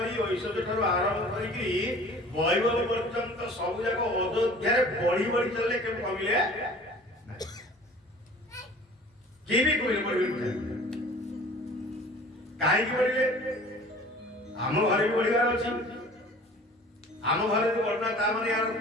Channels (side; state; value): both; normal; correlation 0.46